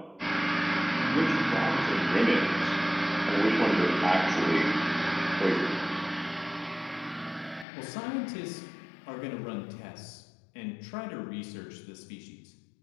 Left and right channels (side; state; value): right; drops out; at 7.7 s